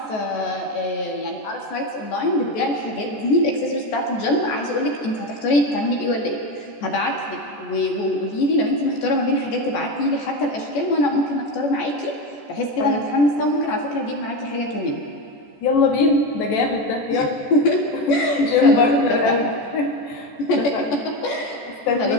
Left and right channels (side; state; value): right; late; 14 ms